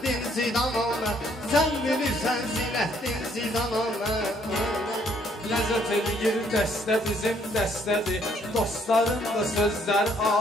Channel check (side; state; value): both; normal; correlation 0.66